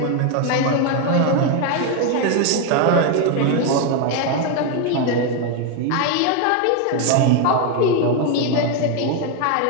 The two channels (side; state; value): both; different; correlation 0.01